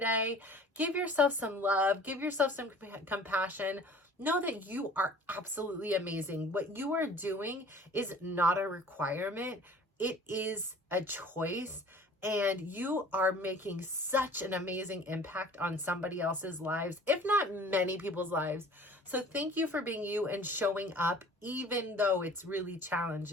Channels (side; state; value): both; normal; correlation 0.47